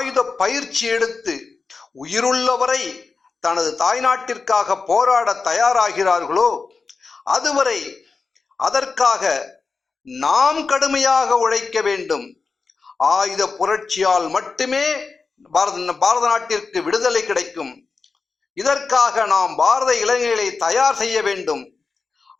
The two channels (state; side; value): quieter; right; 4.5 dB